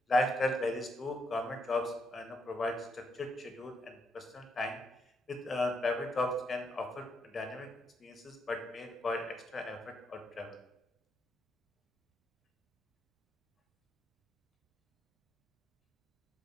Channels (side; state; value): both; normal; correlation 0.78